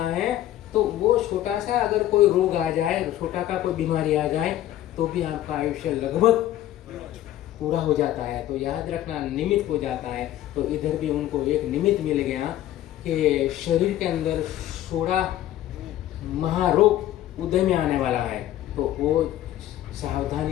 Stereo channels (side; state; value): right; quieter; 13.2 dB